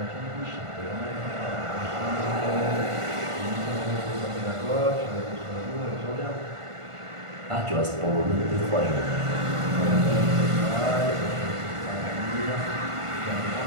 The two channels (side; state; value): left; late; 1.5 ms